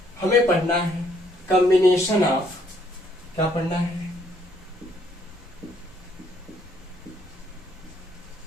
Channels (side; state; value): both; normal; correlation 0.68